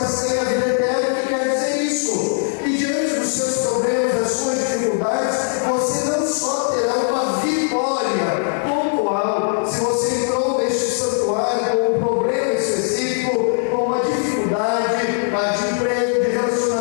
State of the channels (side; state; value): right; silent; digital silence